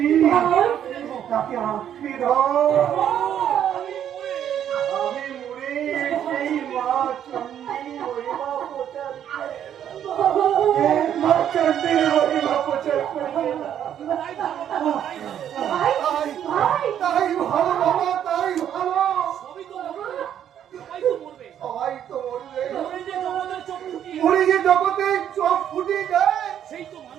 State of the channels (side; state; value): left; quieter; 9.9 dB